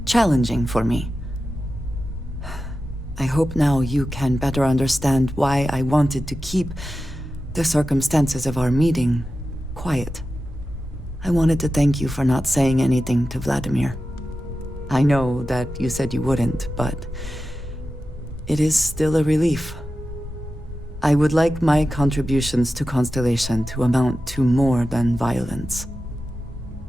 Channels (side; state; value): both; normal; correlation 0.92